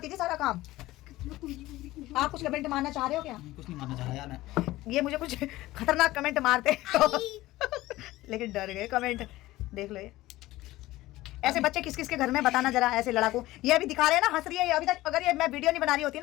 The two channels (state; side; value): quieter; right; 17.4 dB